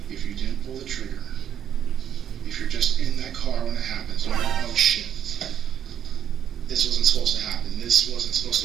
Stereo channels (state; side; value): quieter; left; 9.4 dB